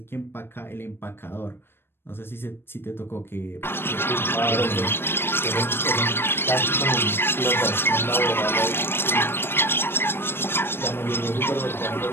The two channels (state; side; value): late; right; 0.11 ms